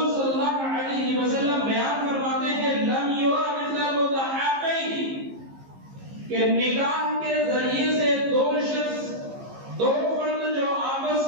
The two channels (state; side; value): late; left; 15 ms